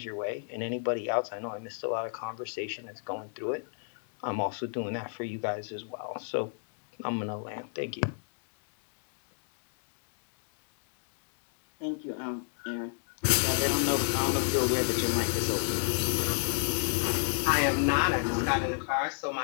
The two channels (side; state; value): right; silent; 58 dB below the other